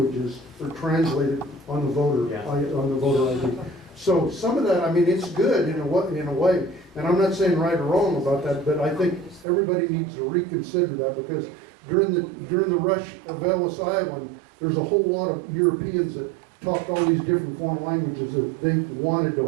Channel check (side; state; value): left; drops out; at 9.5 s